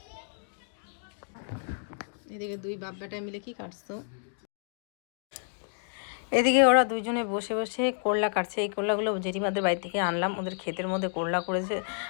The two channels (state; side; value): silent; right; digital silence